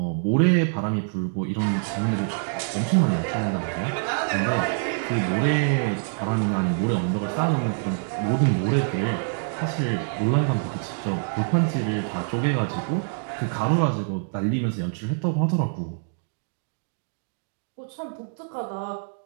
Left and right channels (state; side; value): silent; left; 61 dB below the other